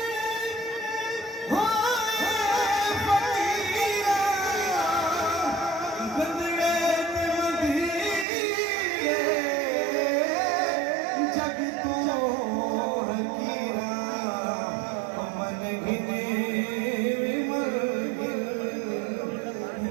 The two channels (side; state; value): left; drops out; at 8.2 s